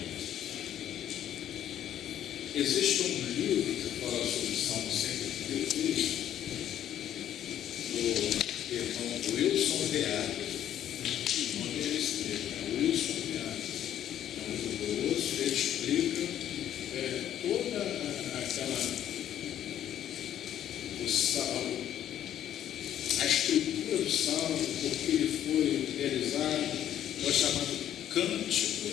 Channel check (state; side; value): quieter; right; 11.0 dB